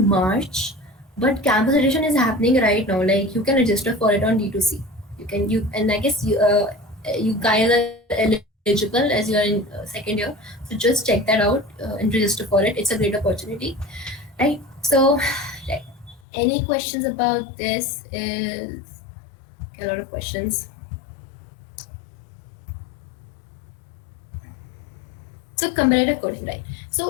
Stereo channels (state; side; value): drops out; right; at 16.2 s